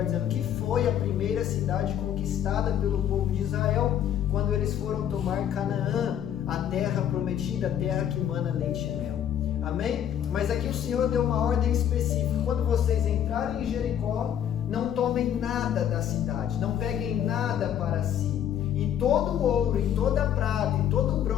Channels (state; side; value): quieter; right; 9.8 dB